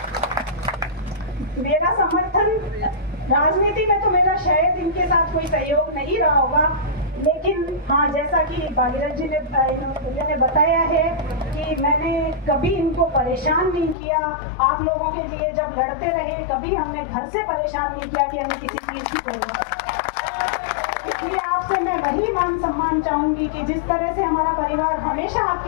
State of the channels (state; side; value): drops out; right; at 14.0 s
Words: मेरा समर्थन राजनीति में तो मेरा शायद इनके साथ कोई सहयोग नहीं रहा होगा, लेकिन हाँ, जैसा कि भागीरथ जी ने बताया है कि मैंने कभी इनको परेशान नहीं किया। आप लोगों के लिए जब लड़ते रहे, कभी हमने घर से परेशान नहीं किया कि हमें किसी चीज की जरूरत है। इसलिए आपसे मैं वही मान सम्मान चाहूंगी कि जिस तरह से हमारा परिवार हमेशा